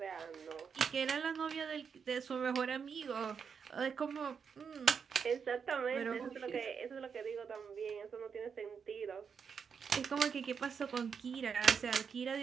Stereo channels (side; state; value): left; quieter; 6.4 dB